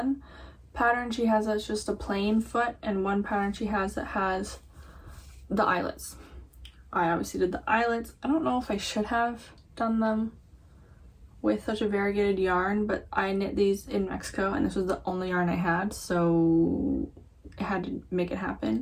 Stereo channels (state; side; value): identical; both; correlation 1.00